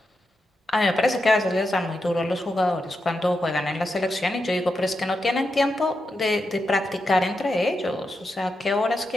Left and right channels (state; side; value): normal; both; correlation 0.87